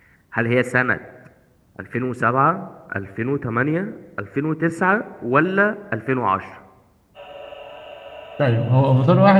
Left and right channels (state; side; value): identical; both; correlation 1.00